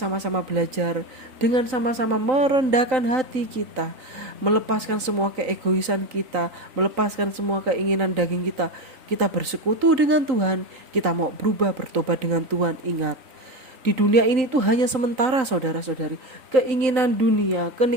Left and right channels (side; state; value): left; late; 3.8 ms